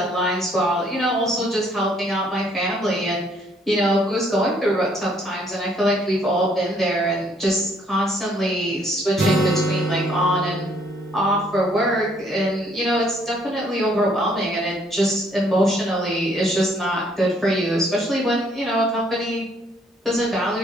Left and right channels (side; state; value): both; normal; correlation 0.65